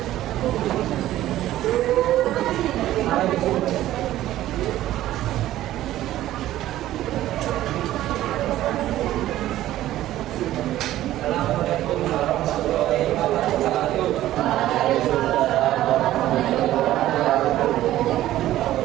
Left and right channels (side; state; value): left; quieter; 14.1 dB